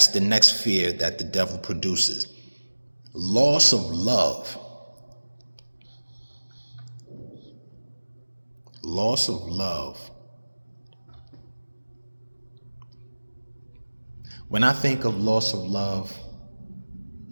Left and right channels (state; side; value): inverted; both; correlation -1.00